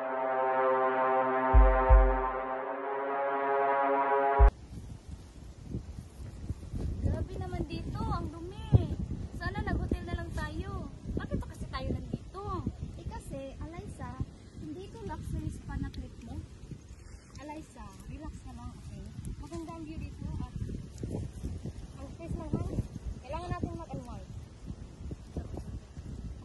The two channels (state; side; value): identical; both; correlation 1.00